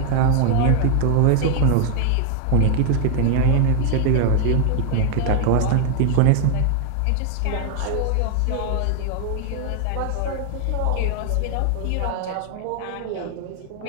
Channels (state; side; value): different; both; correlation 0.00